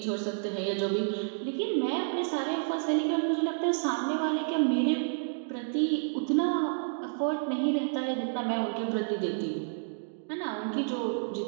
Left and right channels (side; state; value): left; silent; digital silence